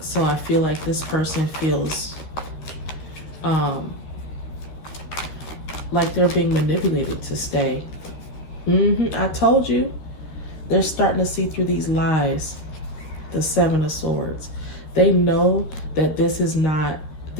I feel like this person feels like they're being manipulated to stay. I told you. They're starting to see through these lies. The Seven of Swords. They know that this is not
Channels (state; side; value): late; right; 13 ms